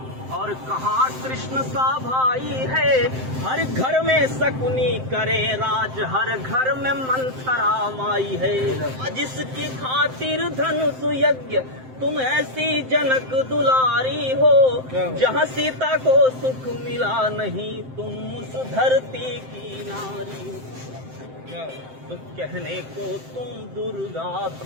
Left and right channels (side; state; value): left; late; 7.7 ms